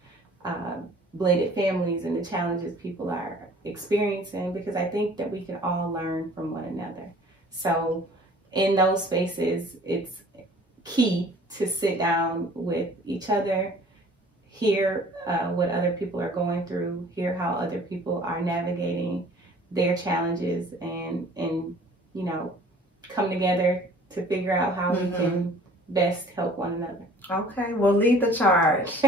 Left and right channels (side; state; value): both; normal; correlation 0.51